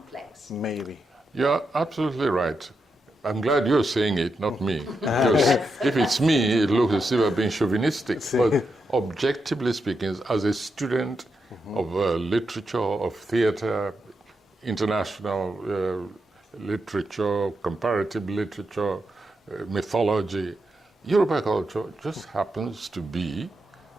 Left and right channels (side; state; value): both; normal; correlation 0.85